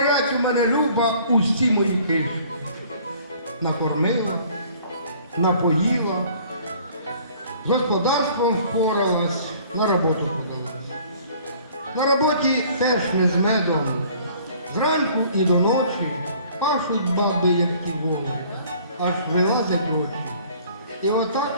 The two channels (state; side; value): inverted; both; correlation -0.54